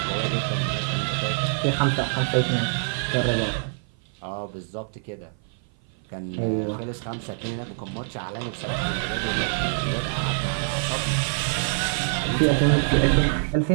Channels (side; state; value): left; silent; 55 dB below the other